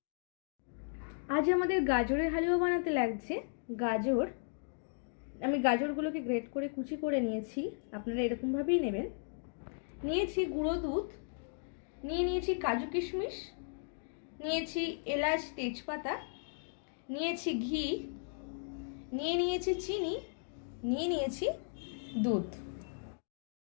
আজ আমাদের গাজরের হালুয়া বানাতে লাগছে গাজর। আমি গাজরগুলোকে গ্রেট করে কুচি করে নিয়েছি, আপনারা এরকমভাবেই নেবেন। নিয়েছি গুঁড়ো দুধ, নিয়েছি কাজু কিশমিশ, নিয়েছি এলাচ তেজপাতা, নিয়েছি ঘি, নিয়েছি চিনি, নিয়েছি দুধ।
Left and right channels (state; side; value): silent; right; digital silence